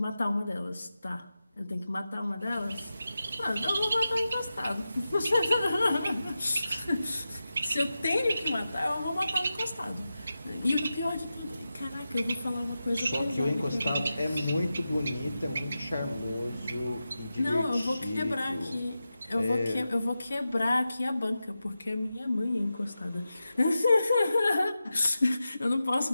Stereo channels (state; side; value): inverted; both; correlation -0.92